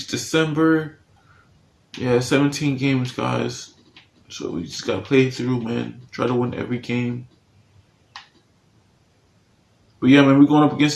December. Yeah, 17 games, guys. So we just gotta play through, man. Try to win every game. But yeah, man, we're going up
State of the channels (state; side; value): identical; both; correlation 1.00